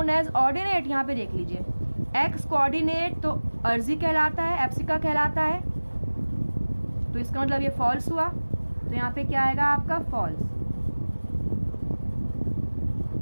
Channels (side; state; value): both; inverted; correlation -1.00